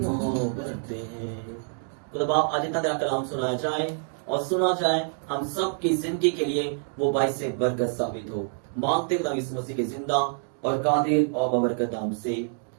है। खुदा बाप आज इतना तेरा कलाम सुनाया जाए और सुना जाए हम सब की जिंदगी के लिए वो बाइस से बरकत साबित हो। मांगते खुदा यीशु मसीह के जिंदा और कादिर और बबरकत नाम से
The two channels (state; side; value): silent; left; 60 dB below the other